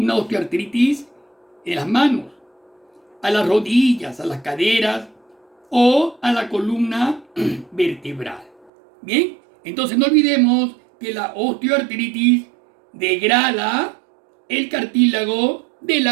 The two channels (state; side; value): drops out; left; at 8.7 s